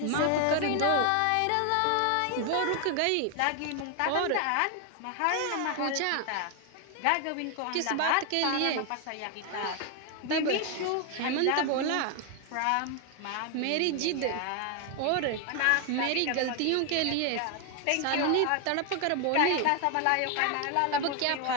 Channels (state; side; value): different; both; correlation 0.01